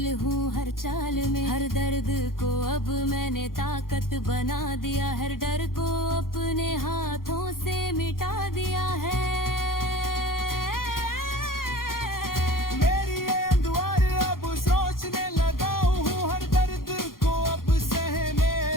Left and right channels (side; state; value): right; late; 0.91 ms